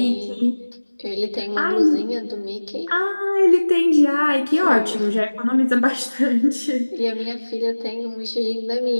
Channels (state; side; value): inverted; both; correlation -1.00